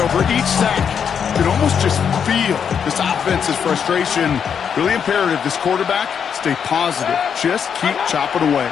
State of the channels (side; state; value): right; quieter; 7.4 dB